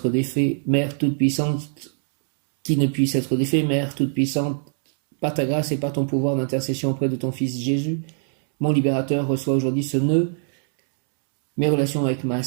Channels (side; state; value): left; silent; 64 dB below the other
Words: défait. Mère toute-puissante, qui ne puisse être défait. Mère toute-puissante, par ta grâce et par ton pouvoir d'intercession auprès de ton Fils Jésus, mon libérateur, reçoit aujourd'hui ce nœud mes relations avec ma